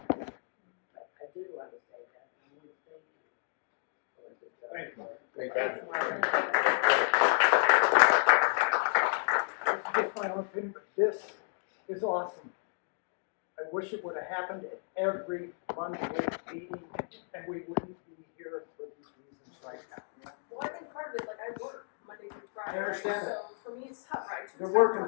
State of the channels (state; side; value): silent; right; 56 dB below the other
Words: But I did want to say that, and I want to thank you for the job. Thank you. Just my own opinion, but this is awesome. I wish it would have happened at every monthly meeting, and we wouldn't be here for these reasons right now. Well, I think part of it, like I work Monday through Friday, I understand right? that. So for me, it's tough, right? They're working